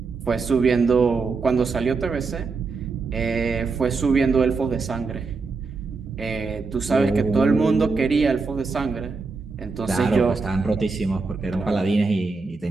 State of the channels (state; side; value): quieter; left; 4.3 dB